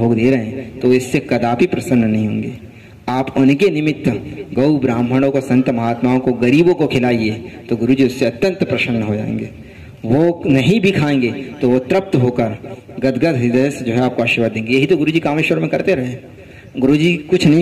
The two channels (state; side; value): identical; both; correlation 1.00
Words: दे रहे हैं, तो इससे कदापि प्रसन्न नहीं होंगे। आप उनके निमित्त गौ ब्राह्मणों को, संत महात्माओं को, गरीबों को खिलाइए, तो गुरु जी उससे अत्यंत प्रसन्न हो जाएंगे। वो नहीं भी खाएंगे तो वो तृप्त होकर गदगद हृदय से जो है आपको आशीर्वाद देंगे। यही तो गुरु जी कामेश्वर में करते रहे। गुरुजी कुछ